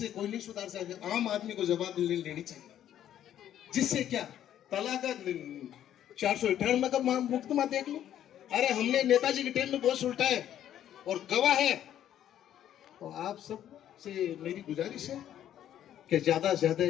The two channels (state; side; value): quieter; right; 11.0 dB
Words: कोई नहीं सुधार सकता, आम आदमी को जवाब लेनी चाहिए। जिससे क्या तलाक 498 का मुकदमा देख लो। अरे हमने नेताजी के टाइम में बहुत उल्टा है और गवाह है। तो आप सब से मेरी गुजारिश है कि ज्यादा से ज्यादा